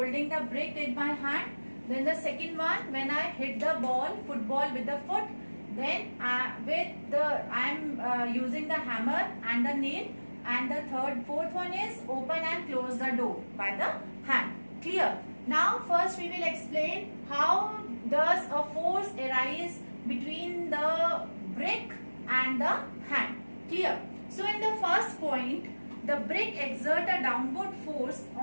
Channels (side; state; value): both; inverted; correlation -1.00